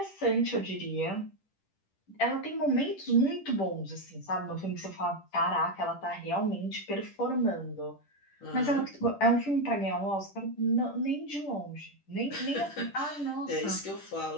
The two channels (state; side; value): late; right; 10 ms